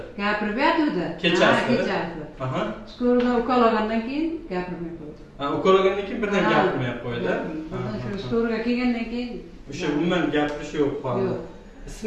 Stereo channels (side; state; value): both; identical; correlation 1.00